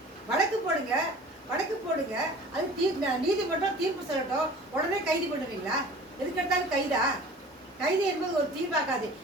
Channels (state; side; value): normal; both; correlation 0.44